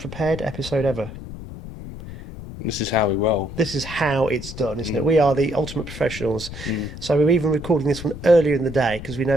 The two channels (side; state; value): left; noise; rumble, 11 dB below the sound